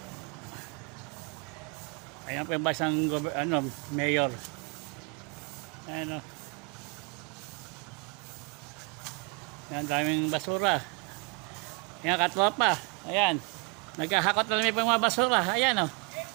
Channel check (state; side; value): quieter; left; 28.9 dB